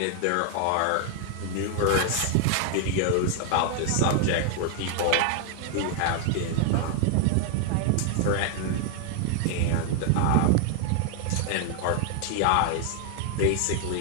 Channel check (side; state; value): both; different; correlation 0.00